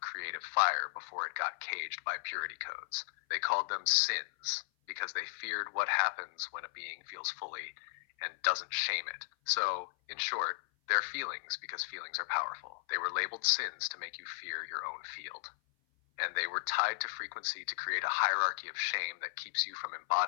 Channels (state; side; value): silent; right; 54 dB below the other